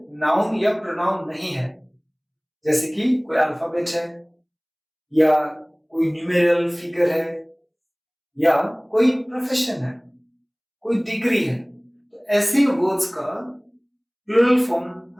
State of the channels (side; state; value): both; identical; correlation 1.00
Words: नाउन या प्रोनाउन नहीं है, जैसे कि कोई अल्फाबेट है या कोई न्यूमेरिकल फिगर है या कोई प्रोफेशन है, कोई डिग्री है, तो ऐसे वर्ड्स का प्लूरल फॉर्म